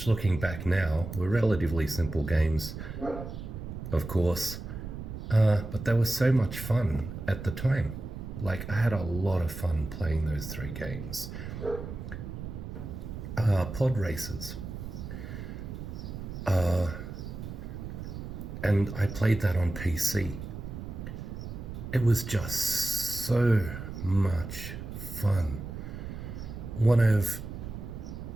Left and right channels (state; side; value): noise; right; rumble, 8 dB below the sound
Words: looking back now were relatively simple games, of course, but they were so much fun at the time. Like, I had a lot of fun playing those three games. Pod races, and I played that on PC. It was just so much fun. One of